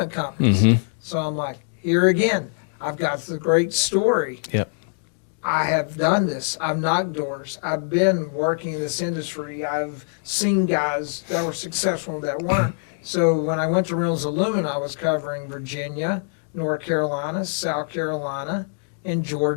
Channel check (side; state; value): right; silent; digital silence